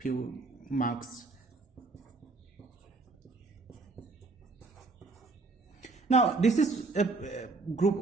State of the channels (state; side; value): quieter; left; 3.8 dB